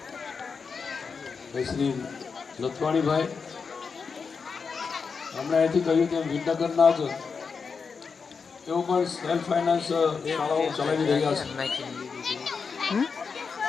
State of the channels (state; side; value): quieter; right; 5.4 dB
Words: શ્રી લથવાણીભાઈ, હમણાં અહીંથી કહ્યું તેમ વિદ્યાનગરના જ તેઓ પણ સેલ્ફ ફાઇનાન્સ શાળાઓ ચલાવી રહ્યા છે.